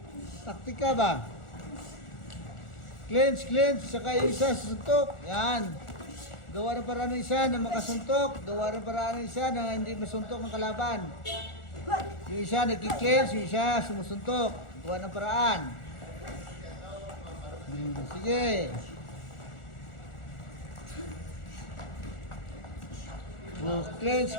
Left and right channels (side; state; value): right; late; 1.4 ms